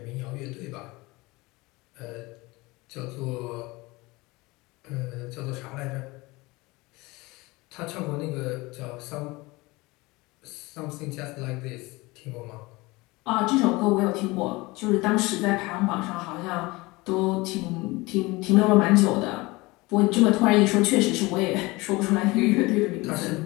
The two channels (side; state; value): right; quieter; 22.7 dB